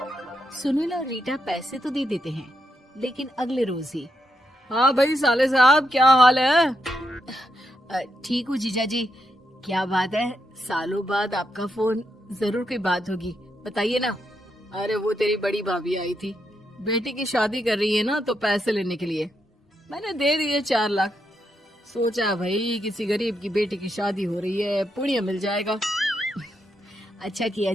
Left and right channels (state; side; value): normal; both; correlation 0.82